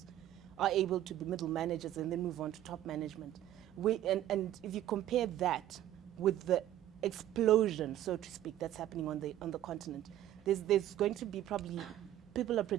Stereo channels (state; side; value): quieter; left; 12.6 dB